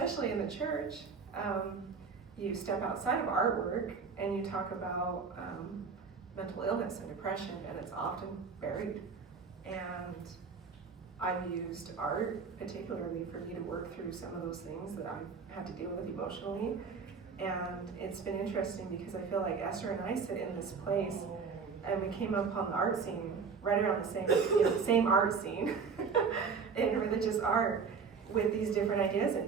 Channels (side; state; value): left; quieter; 5.5 dB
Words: in the church, you step outside of artwork and you talk about mental illness and depression, and it's often buried. And I've used art particularly for me to work through some of those things that I've had to deal with emotionally. And it's been interesting because I feel like Esther and I sit in this place, and we came up on the art scene right around the same art scene in religious art with these different ideas